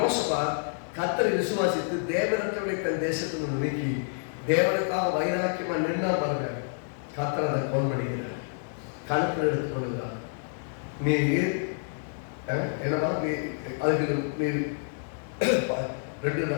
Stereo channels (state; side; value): silent; right; 59 dB below the other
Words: கர்த்தரை விசுவாசித்து தேவனற்றவனை தன் தேசத்திலிருந்து நீக்கி தேவனுக்காக வைராக்கியமா நின்னா பாருங்க, கர்த்தர் அதை கோல் பண்ணுகிறார், கணக்கில் எடுத்துக் கொள்கிறார். நீ என்னவா நீ அதுக்கு நீ